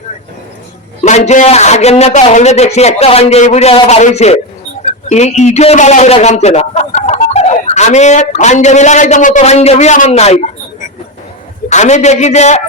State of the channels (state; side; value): normal; both; correlation 0.12